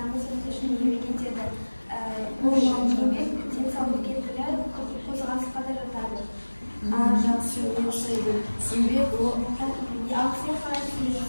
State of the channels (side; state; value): both; inverted; correlation -1.00